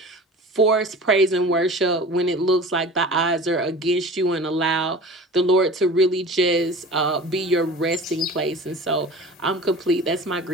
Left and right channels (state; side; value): normal; both; correlation 0.38